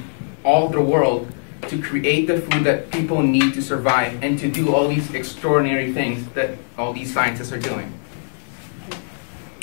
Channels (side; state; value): right; silent; 65 dB below the other